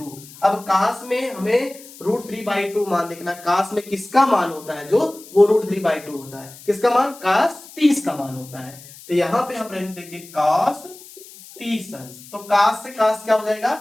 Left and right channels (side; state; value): left; noise; hiss, 19 dB below the sound